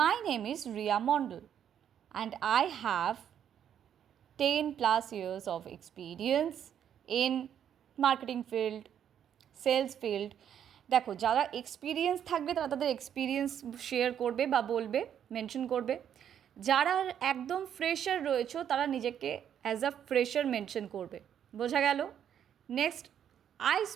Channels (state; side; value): quieter; left; 9.3 dB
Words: name is Riya Mondal and I have 10+ years of experience in marketing field, sales field. দেখো, যারা এক্সপিরিয়েন্স থাকবে তারা তাদের এক্সপিরিয়েন্স শেয়ার করবে বা বলবে, মেনশন করবে। যারা একদম ফ্রেশার রয়েছে তারা নিজেকে অ্যাজ আ ফ্রেশার মেনশন করবে। বোঝা গেল? নেক্সট, আই